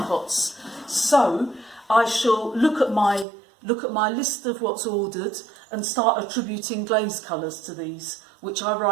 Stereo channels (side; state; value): left; drops out; at 3.2 s